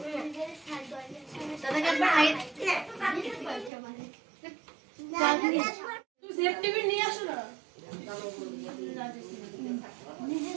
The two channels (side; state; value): left; drops out; at 3.7 s